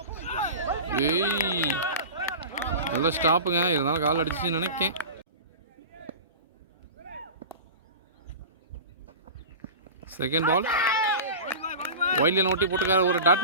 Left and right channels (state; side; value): inverted; both; correlation -0.32